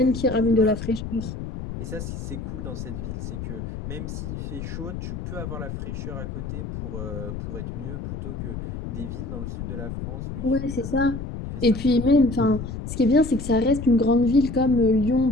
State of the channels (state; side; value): noise; left; rumble, 7 dB below the sound